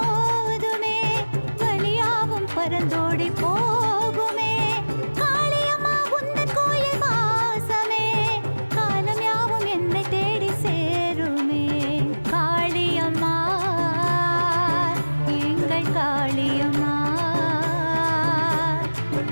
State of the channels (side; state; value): both; inverted; correlation -1.00